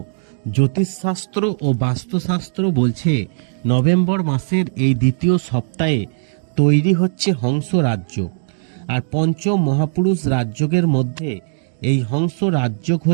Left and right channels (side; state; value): left; silent; digital silence